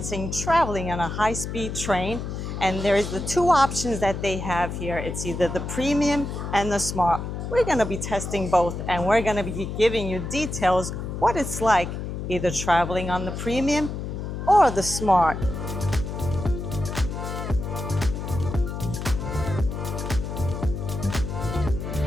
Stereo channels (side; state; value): left; noise; hum, 5 dB below the sound